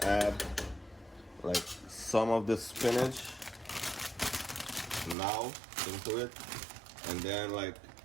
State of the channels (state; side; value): drops out; left; at 5.2 s